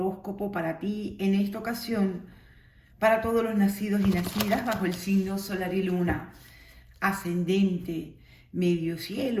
para ti en esta ocasión, para todos los nacidos y nacidas bajo el signo solar y luna, ascendente, medio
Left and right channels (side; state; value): both; identical; correlation 1.00